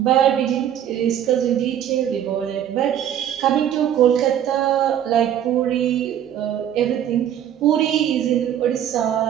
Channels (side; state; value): left; quieter; 10.3 dB